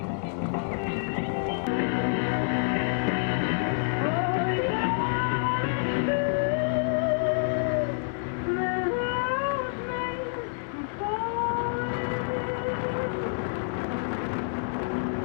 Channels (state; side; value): silent; right; digital silence